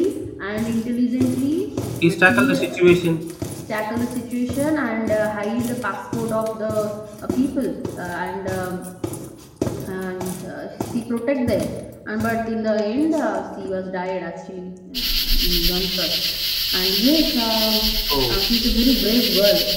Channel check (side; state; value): both; identical; correlation 1.00